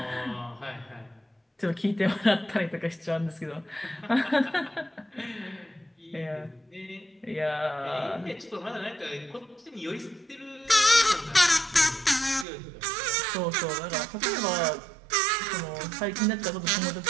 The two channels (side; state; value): left; drops out; at 12.5 s